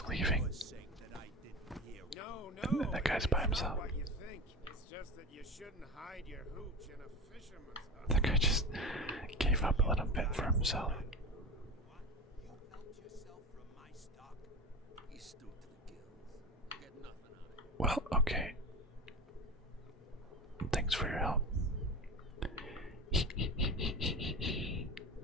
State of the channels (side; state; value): both; normal; correlation 0.28